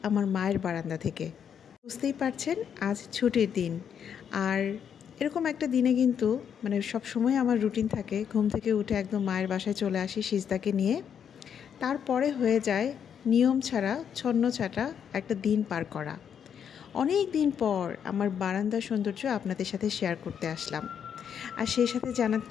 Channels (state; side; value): quieter; right; 8.0 dB